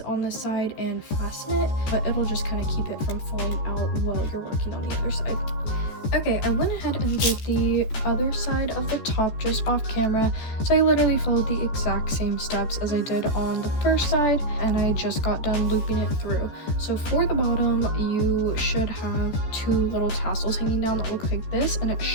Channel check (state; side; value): late; right; 13 ms